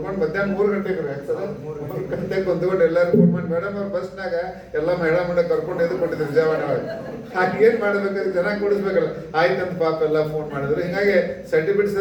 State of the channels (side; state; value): both; identical; correlation 1.00